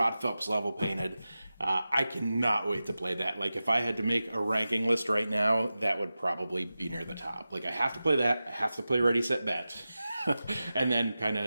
Phelps level painted. I cannot wait to play that. Like if I had to make a ranking list right now, that would probably be near the top. Like I have to play that. I have to play Ready, Set, Bet. And then kind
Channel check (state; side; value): inverted; both; correlation -0.94